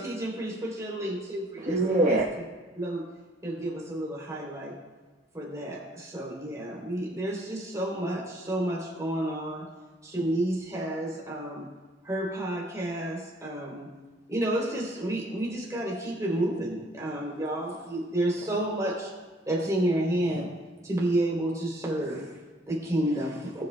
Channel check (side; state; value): both; normal; correlation 0.61